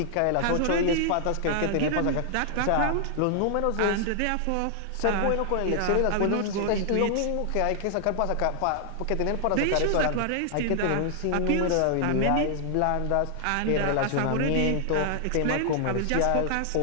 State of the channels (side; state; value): both; different; correlation 0.00